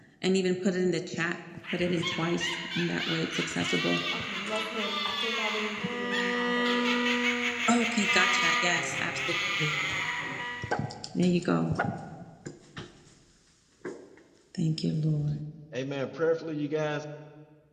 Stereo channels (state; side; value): identical; both; correlation 1.00